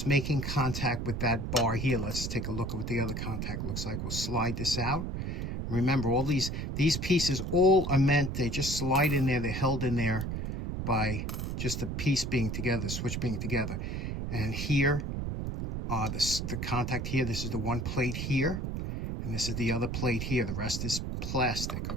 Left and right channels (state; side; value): noise; right; rumble, 3 dB below the sound